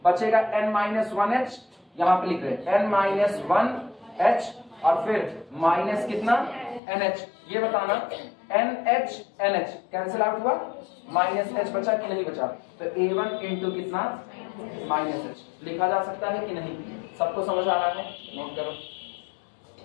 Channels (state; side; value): drops out; right; at 6.8 s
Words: बचेगा n माइनस 1 h, यहां पर लिख रहे हैं n माइनस 1 h, और फिर माइनस कितना NH, ये बताना NH NH कैंसिल आउट हुआ, माइनस H बचा कि नहीं बचा, तो A1 इंटू कितना माइनस H लिखा जा सकता है कि नहीं, सबको समझ आ रहा है, नोट करो